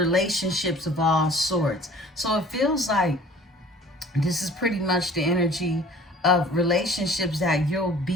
of all sorts. So it feels like this is pretty much the energy of relationships that you'll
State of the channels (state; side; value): normal; both; correlation 0.49